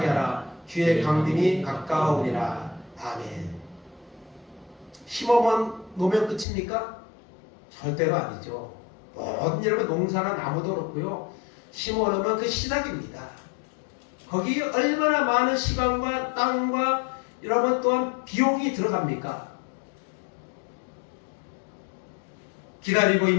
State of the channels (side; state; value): right; drops out; at 6.5 s